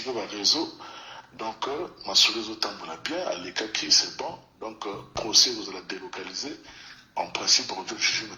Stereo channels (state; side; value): identical; both; correlation 1.00